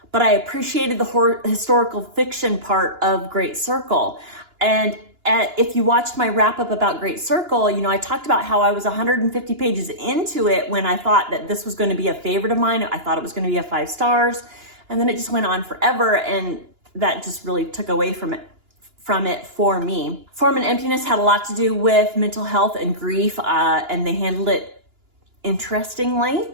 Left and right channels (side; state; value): left; late; 2.9 ms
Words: but I appreciated the historical fiction part of Great Circle. And if you watched my wrap up about Great Circle, you know, I talked about how I was 150 pages into it when I thought that this was going to be a favorite of mine. I thought it was going to be a 5 stars, and then it just went on forever, and that just really took away from it for me. Form and Emptiness had a lot to do with mental health and grief, and they handled it interestingly.